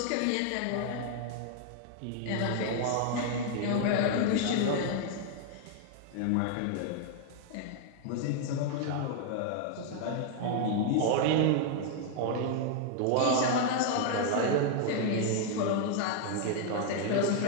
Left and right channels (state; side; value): different; both; correlation 0.00